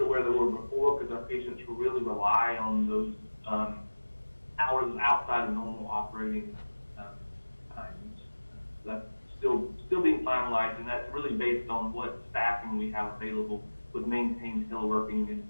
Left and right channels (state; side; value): inverted; both; correlation -1.00